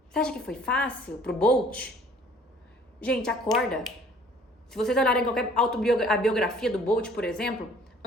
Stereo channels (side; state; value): both; normal; correlation 0.55